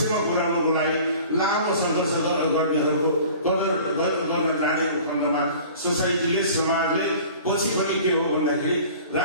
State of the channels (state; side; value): inverted; both; correlation -0.45